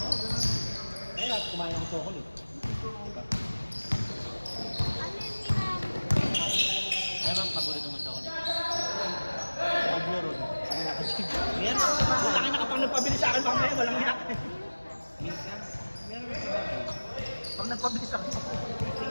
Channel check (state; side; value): inverted; both; correlation -1.00